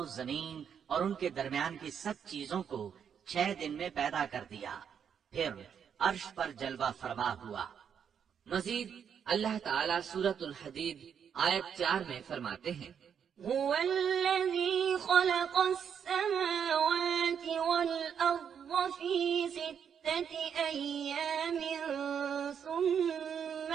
زمین اور ان کے درمیان کی سب چیزوں کو 6 دن میں پیدا کر دیا، پھر عرش پر جلوہ فرما ہوا۔ مزید اللہ تعالیٰ سورۃ الحدید آیت 4 میں فرماتے ہیں هو الذي خلق السماوات والأرض في 6 أيام ثم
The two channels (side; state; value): left; quieter; 7.8 dB